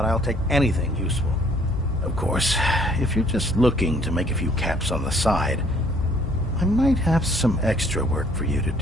I'll take anything useful. Of course, if you're just looking to make a few caps on the side, I might have some extra work for you to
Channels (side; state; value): both; normal; correlation 0.60